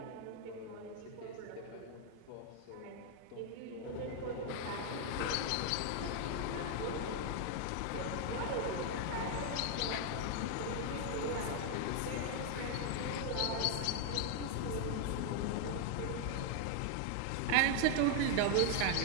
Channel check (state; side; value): different; both; correlation 0.00